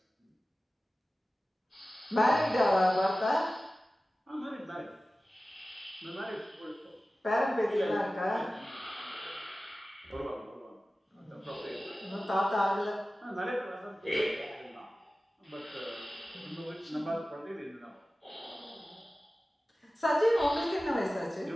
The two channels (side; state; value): both; normal; correlation 0.96